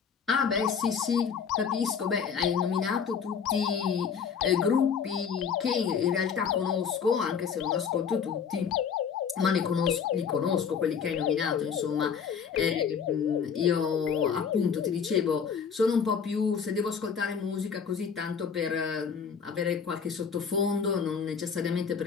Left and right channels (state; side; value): quieter; right; 6.7 dB